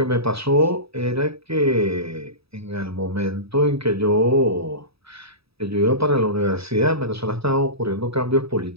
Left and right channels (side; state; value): left; late; 0.77 ms